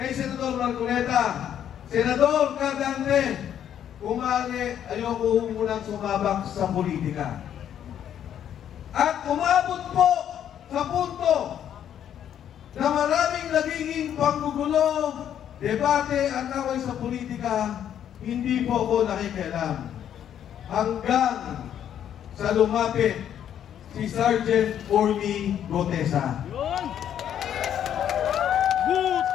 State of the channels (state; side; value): quieter; right; 9.9 dB